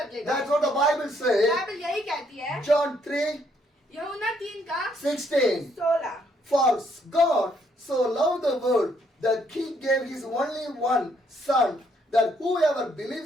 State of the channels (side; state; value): both; normal; correlation 0.70